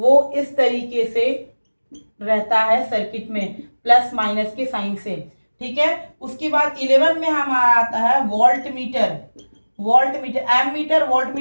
इस तरीके से रहता है सर्किट में, प्लस माइनस के साइन से, ठीक है। उसके बाद 11 में हमारा आता है voltmeter. Voltmeter, ammeter, वोल्ट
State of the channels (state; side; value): inverted; both; correlation -1.00